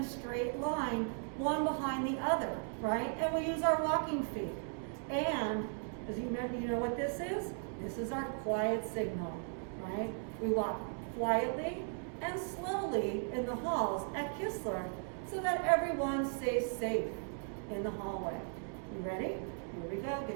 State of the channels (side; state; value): left; silent; 53 dB below the other